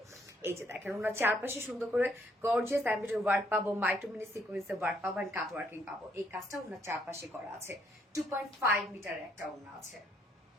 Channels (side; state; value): both; normal; correlation 0.70